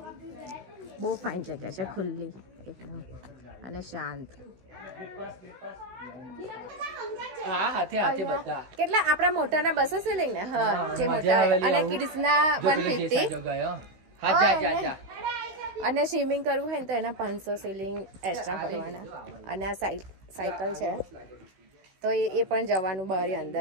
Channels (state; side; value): late; left; 16 ms